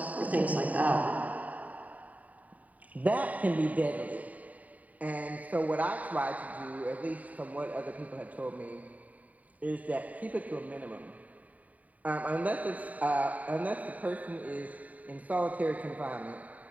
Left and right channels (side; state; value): left; late; 0.072 ms